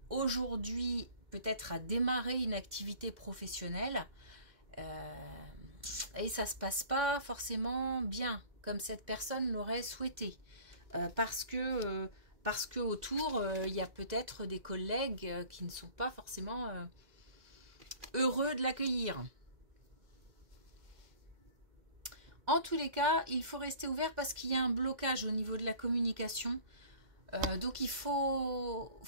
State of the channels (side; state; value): left; late; 2.1 ms